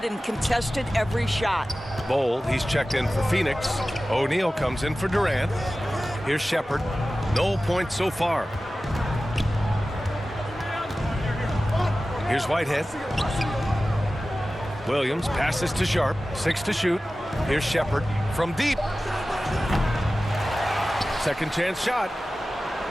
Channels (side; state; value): both; normal; correlation 0.95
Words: and contested every shot. Bol, he's checked in for Phoenix. O'Neal comes in for Durant. Here's Shepard. No points so far. Here's Whitehead. Williams passes to Sharp. 6 to shoot. Here's Shepard from deep. Second chance shot.